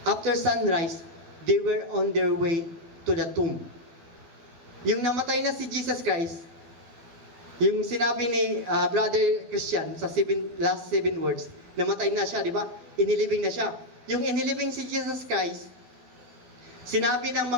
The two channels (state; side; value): late; left; 12 ms